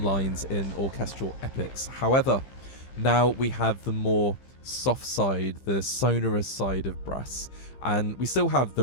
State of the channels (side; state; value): right; late; 15 ms